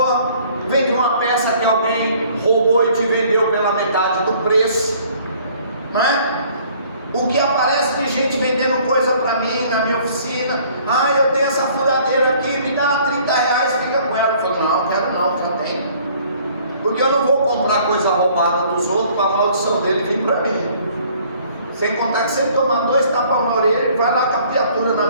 veio de uma peça que alguém roubou e te vendeu pela metade do preço, não é? O que aparece de gente vendendo coisa para mim na minha oficina: eu tenho essa furadeira aqui, me dá R$30, fica com ela. Eu falo: não, quero não, já tem. Porque eu não vou comprar coisa roubada dos outros para a maldição dele vir para mim. Sem contar que se ele tomar 2 tapas na orelha, ele vai lá com a criatura na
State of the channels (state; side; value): inverted; both; correlation -0.57